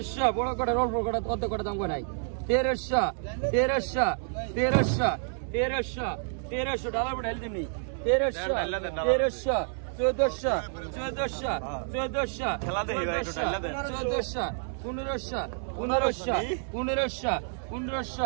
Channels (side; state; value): left; silent; 59 dB below the other